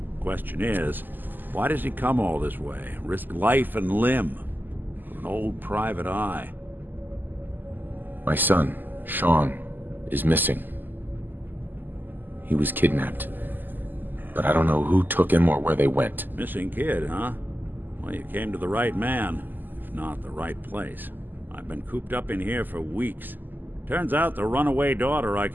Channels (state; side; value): late; left; 0.089 ms